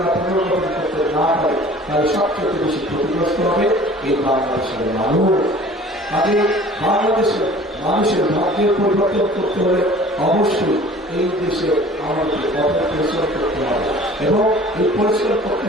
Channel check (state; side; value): normal; both; correlation 0.47